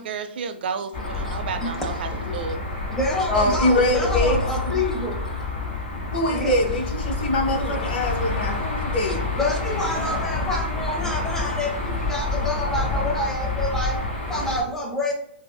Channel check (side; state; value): both; normal; correlation -0.11